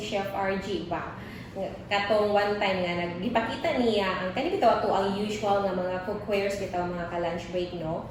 Chef RG ba. Katong one time nga nagipakita niya ang kani bitaw ato ang usual nga mga cookwares bitaw mga ka-lunch break no.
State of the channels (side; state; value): both; identical; correlation 1.00